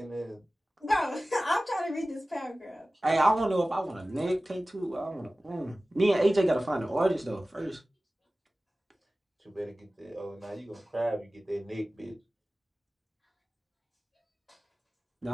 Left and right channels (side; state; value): both; normal; correlation 0.97